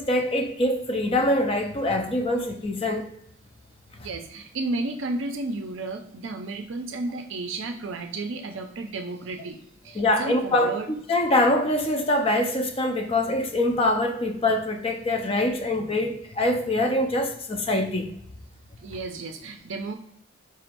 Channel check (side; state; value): both; normal; correlation 0.31